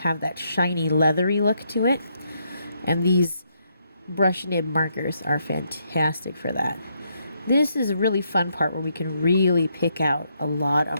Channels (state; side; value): inverted; both; correlation -0.76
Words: that shiny, leathery look to it. And these brush nib markers are fantastic for that. This is a really fun part where we can really pick out a lot